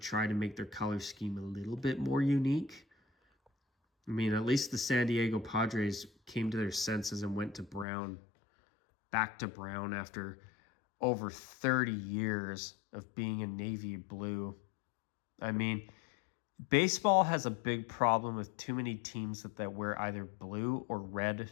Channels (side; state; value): right; drops out; at 7.9 s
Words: to make their color scheme a little bit more unique. I mean, at least the San Diego Padres came to their senses and went to brown, back to brown after over 30 years of being in navy blue. I mean, baseball has a big problem with too many teams that wear either blue or red.